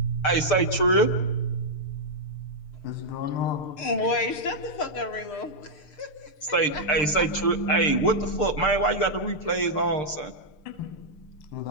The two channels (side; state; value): right; late; 6.7 ms